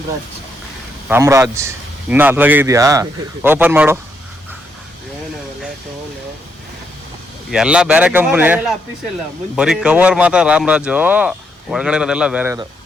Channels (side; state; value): both; normal; correlation 0.77